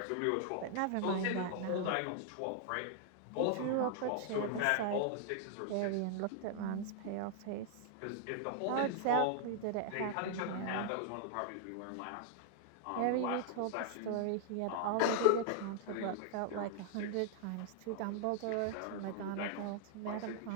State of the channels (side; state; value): both; different; correlation -0.01